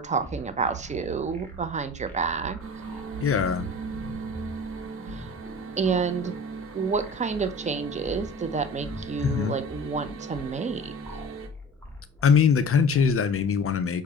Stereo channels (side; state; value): both; normal; correlation 0.41